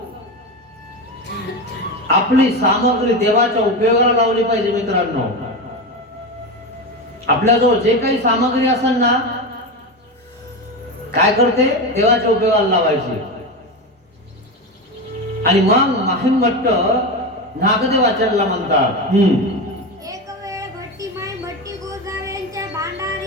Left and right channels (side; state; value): both; normal; correlation 0.19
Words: आपली सामग्री देवाच्या उपयोगाला लावली पाहिजे मित्रांनो. आपल्याजवळ जे काही सामग्री असेल ना, काय करते, देवाच्या उपयोगाला लावायची. आणि मग माहिम भट्ट नागदेवाचार्याला म्हणतात, एक वेळ भट्टी माई भट्टी गोसाव्यांच्या